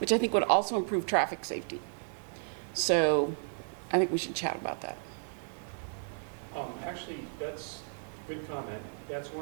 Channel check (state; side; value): silent; left; 56 dB below the other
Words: I think would also improve traffic safety. So I think we should chat about that. Actually, that's a good comment. That's